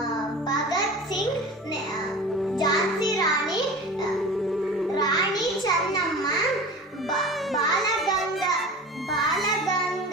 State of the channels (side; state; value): both; normal; correlation 0.35